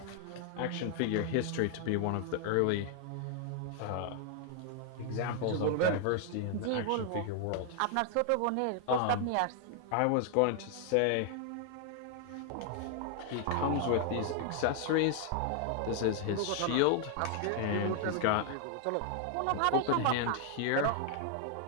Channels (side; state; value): both; different; correlation 0.00